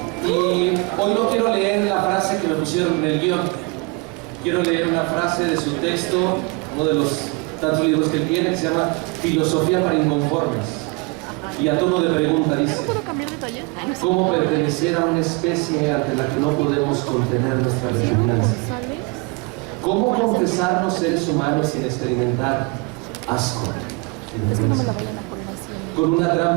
Y hoy no quiero leer la frase que me pusieron en el guión. Quiero leer una frase de su texto, uno de los tantos libros que él tiene, que se llama Filosofía para Inconformes. Y a tono de pregunta dice: ¿cómo pertenecer a una especie ante la que no podemos contener nuestra repugnancia? ¿Cómo confesarnos seres humanos sin experimentar asco y vergüenza? Con una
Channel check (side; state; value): left; quieter; 29.2 dB